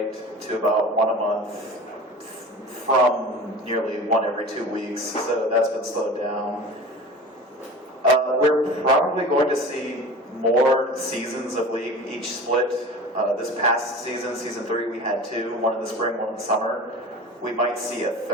to about 1 a month from nearly 1 every 2 weeks, so that's been slowed down. We're probably going to see more seasons of League each split. This past season, season 3, we had 2, one in the spring, one in the summer. We might see a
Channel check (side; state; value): both; normal; correlation 0.36